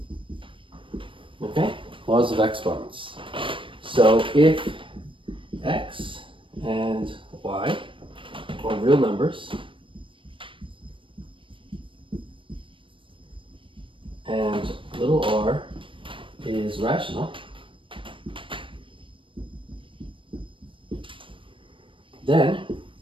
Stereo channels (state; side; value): late; left; 0.25 ms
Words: Okay, laws of exponents. So if x and y are real numbers, and little r is rational, then